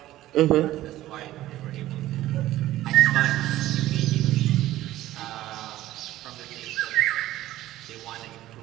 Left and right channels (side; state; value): left; quieter; 15.0 dB